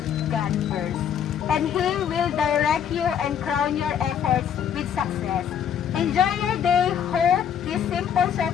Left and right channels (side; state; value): right; quieter; 8.6 dB